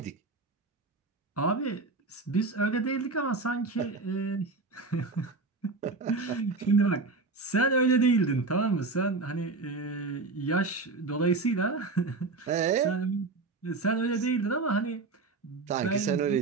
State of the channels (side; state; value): left; quieter; 3.8 dB